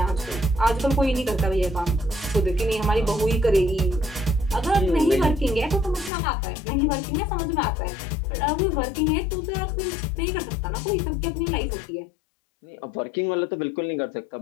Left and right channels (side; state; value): right; drops out; at 6.1 s